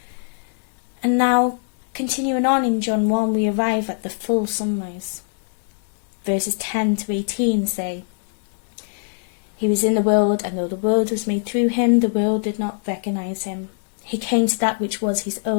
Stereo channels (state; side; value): silent; right; digital silence